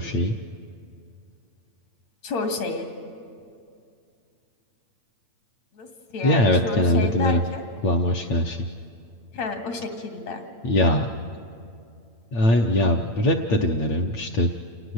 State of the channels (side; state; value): right; late; 8.8 ms